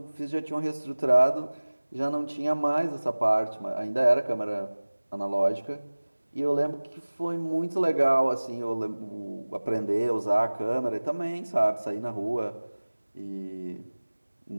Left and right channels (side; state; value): both; inverted; correlation -1.00